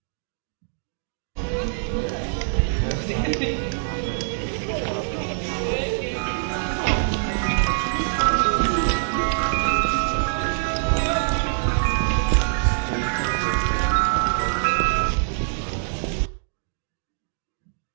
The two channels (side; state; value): left; silent; digital silence